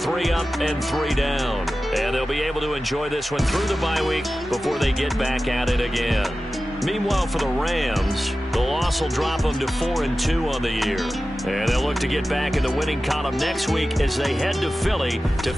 up and 3 down. And they'll be able to enjoy this one through the bye week before they get back at it again. Meanwhile, for the Rams, the loss will drop them to 4-2 on the year. And they'll look to get back in the winning column next week as they head to Philly to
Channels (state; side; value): normal; both; correlation 0.95